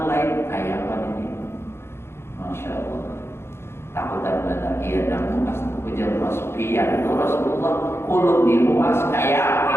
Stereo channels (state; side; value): late; right; 0.12 ms